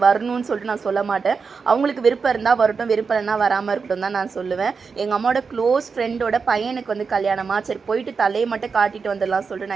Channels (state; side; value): quieter; left; 5.2 dB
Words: வரணும்னு சொல்லிட்டு நான் சொல்ல மாட்டேன். அவங்களுக்கு விருப்பம் இருந்தால் வரட்டும், விருப்பம் இல்லைன்னா வராமல் இருக்கட்டும் தான் நான் சொல்லுவேன். எங்கள் அம்மாவோட க்ளோஸ் ஃப்ரெண்டோட பையனுக்கு வந்து கல்யாணமா, சரி போயிட்டு தலையை மட்டும் காட்டிட்டு வந்துடலாம் சொல்லிட்டு